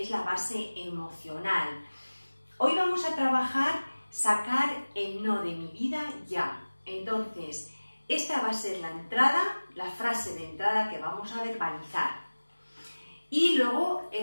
la base emocional. Hoy vamos a trabajar sacar el no de mi vida ya. Entonces, esta va a ser la entrada, la frase de entrada que vamos a verbalizar. Y luego,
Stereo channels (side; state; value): both; inverted; correlation -1.00